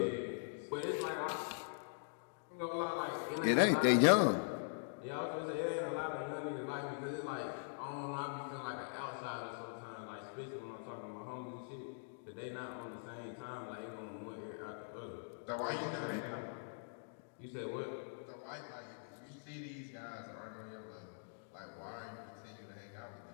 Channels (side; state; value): right; silent; digital silence